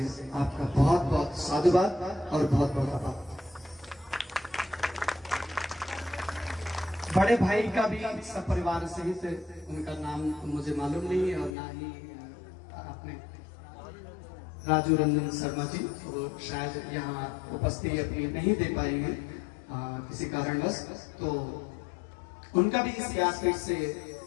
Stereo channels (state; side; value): drops out; right; at 11.5 s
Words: आपका बहुत बहुत साधुवाद और बहुत बहुत आभार। बड़े भाई का भी सब परिवार सहित, उनका नाम मुझे मालूम नहीं और ना ही आपने राजू रंजन शर्मा जी, वो शायद यहाँ उपस्थिति अपनी नहीं दे पाई है किसी कारणवश, तो उनका भी इस व्यासपीठ से